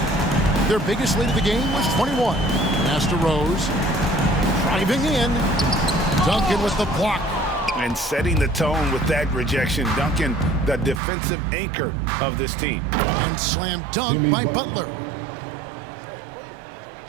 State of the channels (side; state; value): left; drops out; at 11.0 s